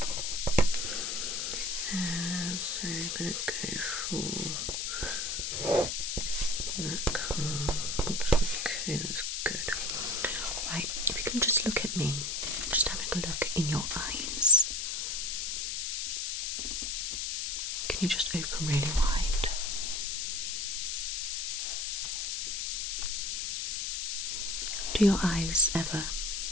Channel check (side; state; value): left; noise; hiss, 1 dB below the sound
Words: So you're going to go for that card. Okay, that's good. Right, if you can just look at me, just having a look in your eyes. Can you just open really wide? Do your eyes ever